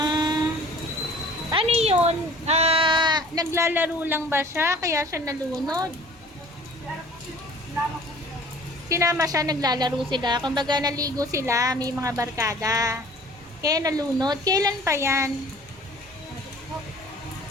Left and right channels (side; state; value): both; normal; correlation 0.48